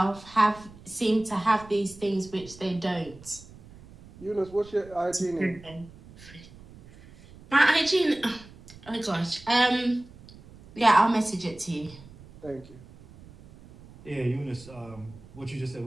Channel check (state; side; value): noise; right; rumble, 21 dB below the sound